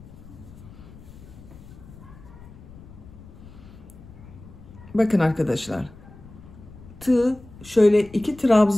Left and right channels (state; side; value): noise; left; rumble, 19 dB below the sound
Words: Bakın arkadaşlar. Tığ şöyle 2